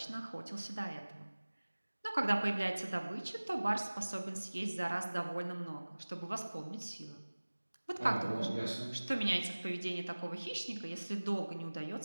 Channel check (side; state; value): both; inverted; correlation -1.00